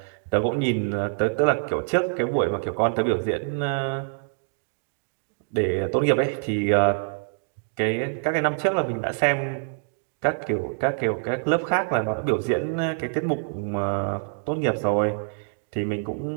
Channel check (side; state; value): left; silent; digital silence